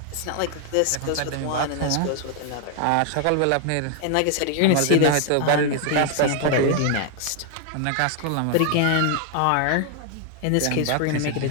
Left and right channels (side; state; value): both; different; correlation 0.00